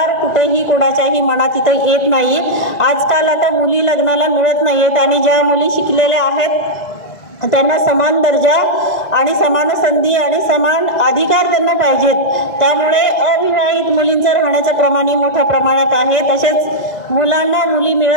कुठेही कोणाच्याही मनात इथं येत नाही. आजकाल आता मुली लग्नाला मिळत नाहीयेत आणि ज्या मुली शिकलेल्या आहेत त्यांना समान दर्जा आणि समान संधी आणि समान अधिकार त्यांना पाहिजेत. त्यामुळे अविवाहित मुलींचं राहण्याचं प्रमाणही मोठ्या प्रमाणात आहे. तसेच मुलांना मुली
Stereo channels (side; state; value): right; late; 2.0 ms